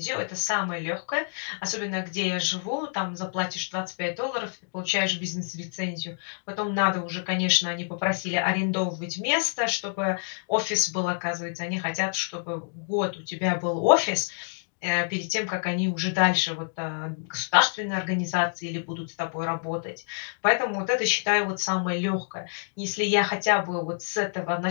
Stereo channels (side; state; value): right; silent; digital silence